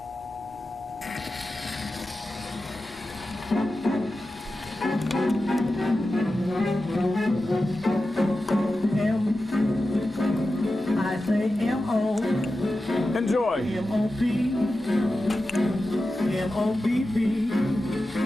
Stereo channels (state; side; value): noise; right; hum, 28 dB below the sound